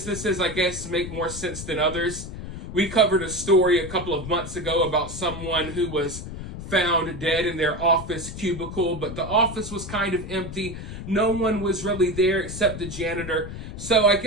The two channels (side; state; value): left; noise; rumble, 9 dB below the sound